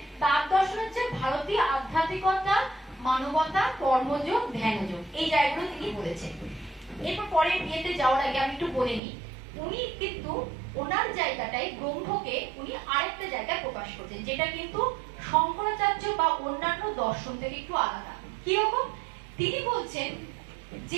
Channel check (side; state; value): left; drops out; at 9.0 s